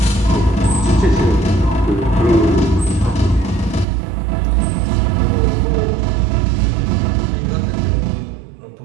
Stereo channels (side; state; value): left; drops out; at 3.9 s